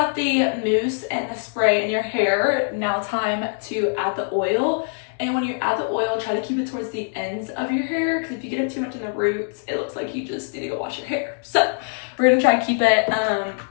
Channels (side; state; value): right; silent; digital silence